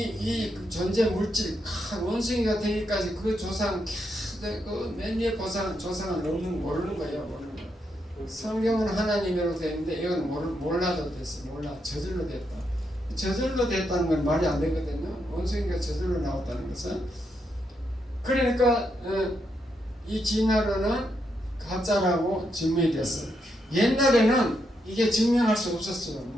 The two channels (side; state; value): both; normal; correlation 0.81